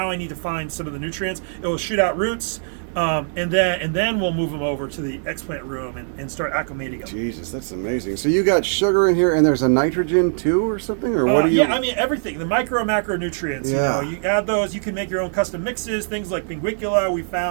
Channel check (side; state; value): left; silent; digital silence